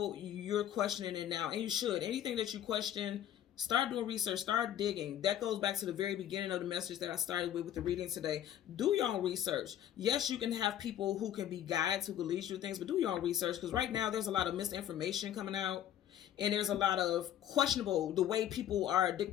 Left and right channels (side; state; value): right; quieter; 11.0 dB